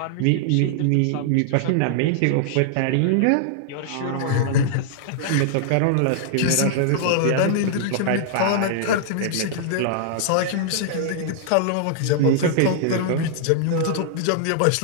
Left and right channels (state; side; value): different; both; correlation -0.01